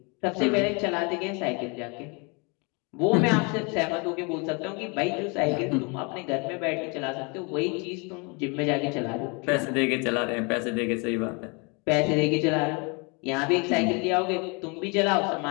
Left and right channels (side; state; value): right; quieter; 31.4 dB